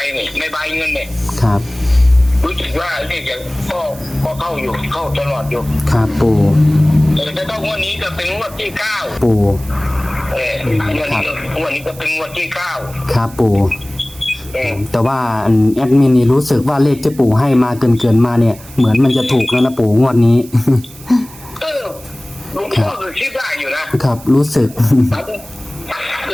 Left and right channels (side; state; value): right; noise; hiss, 20 dB below the sound